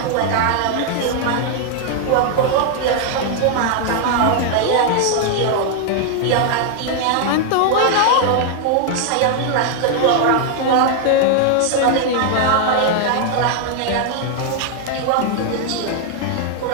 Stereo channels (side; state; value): both; different; correlation 0.00